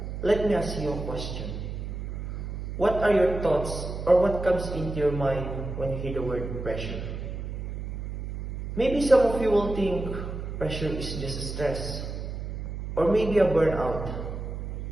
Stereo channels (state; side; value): noise; right; hum, 6 dB below the sound